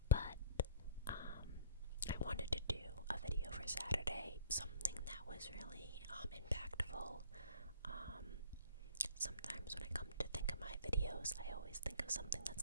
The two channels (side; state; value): both; inverted; correlation -0.48